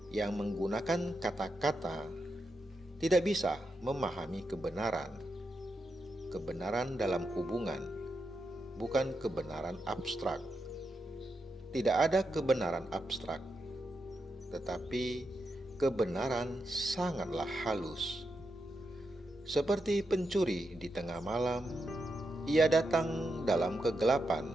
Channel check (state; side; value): normal; both; correlation 0.85